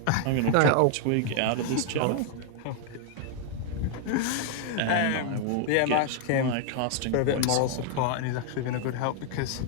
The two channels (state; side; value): different; both; correlation 0.00